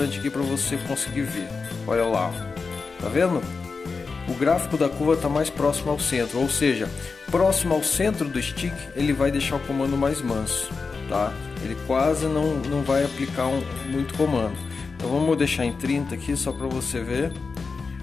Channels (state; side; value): quieter; right; 4.6 dB